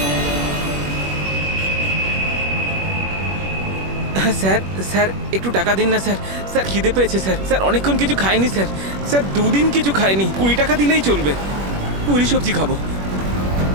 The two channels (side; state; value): left; late; 21 ms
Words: স্যার স্যার একটু টাকা দিন না স্যার। স্যার খিদে পেয়েছে স্যার। স্যার অনেকক্ষণ কিছু খাইনি স্যার। স্যার 2 দিন কিছু খাইনি, 20 টাকা দিলেই চলবে, পুরি সবজি খাবো।